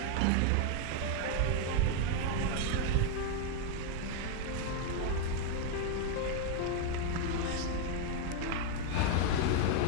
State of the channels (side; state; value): both; different; correlation 0.01